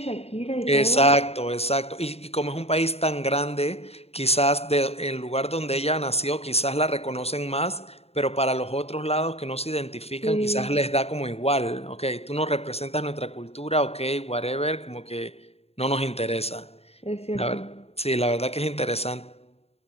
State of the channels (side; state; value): right; late; 0.30 ms